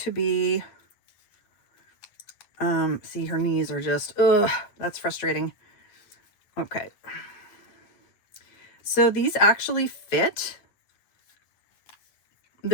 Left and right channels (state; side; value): late; right; 9.5 ms